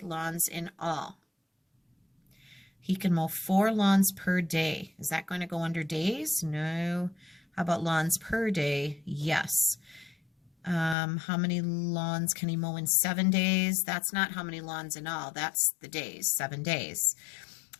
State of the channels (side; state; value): right; drops out; at 11.0 s